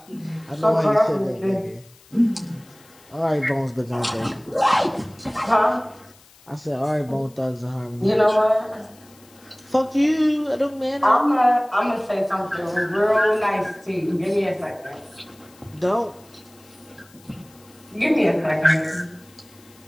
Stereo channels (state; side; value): noise; left; hiss, 27 dB below the sound